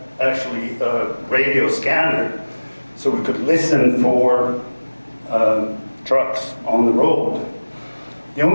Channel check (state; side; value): inverted; both; correlation -1.00